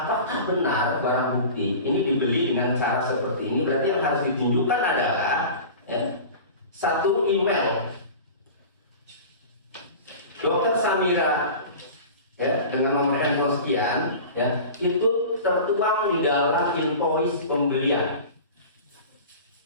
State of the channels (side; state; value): both; inverted; correlation -0.36